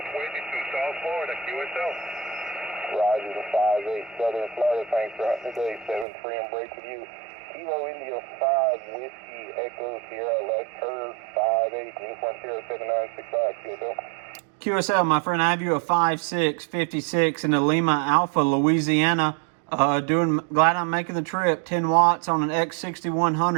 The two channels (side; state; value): left; drops out; at 6.1 s